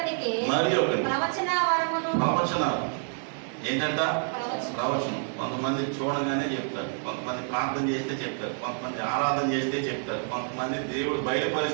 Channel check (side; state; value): left; silent; 59 dB below the other